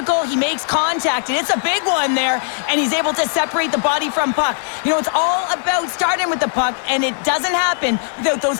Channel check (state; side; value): silent; right; digital silence